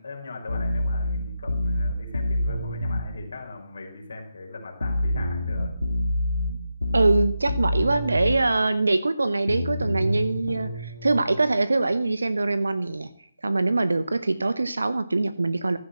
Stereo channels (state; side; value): inverted; both; correlation -0.91